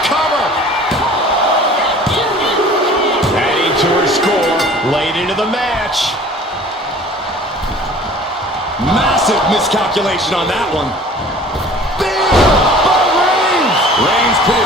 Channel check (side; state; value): both; normal; correlation 0.47